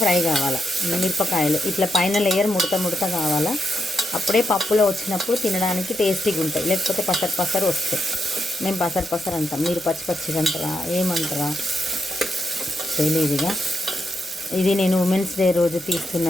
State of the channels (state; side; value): normal; both; correlation 0.83